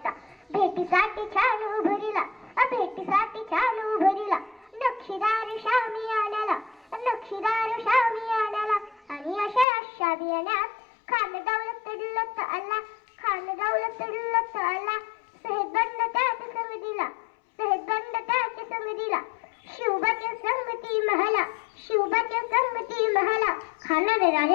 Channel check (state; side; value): drops out; right; at 9.7 s